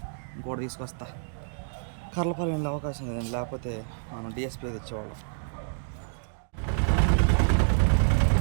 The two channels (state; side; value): silent; left; digital silence